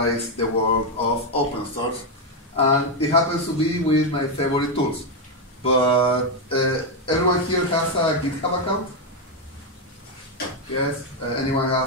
the world of open source. And it happens to be with my favorite tools. But everyone here has a GitHub account? Yes? Anyone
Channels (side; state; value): both; normal; correlation 0.04